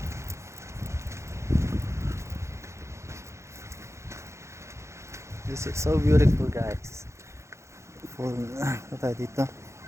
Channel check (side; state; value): left; late; 0.14 ms